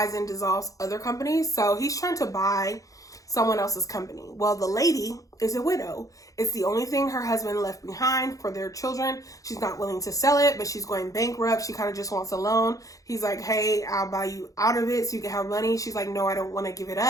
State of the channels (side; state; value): right; late; 0.17 ms